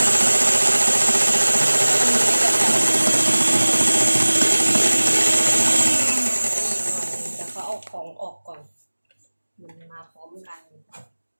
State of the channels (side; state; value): both; inverted; correlation -1.00